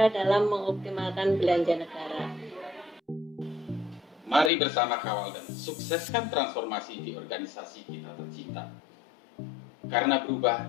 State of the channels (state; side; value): drops out; right; at 4.5 s